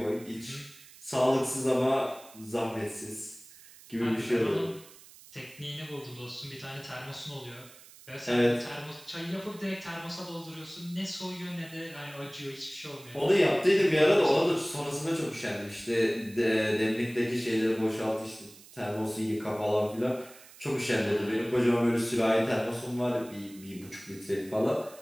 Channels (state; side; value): noise; right; hiss, 21 dB below the sound